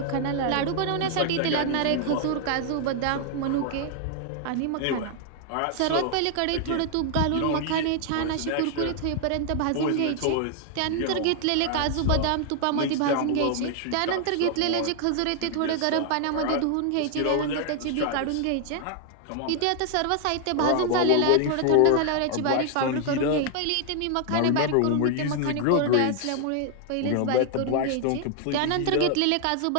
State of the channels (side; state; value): both; different; correlation 0.00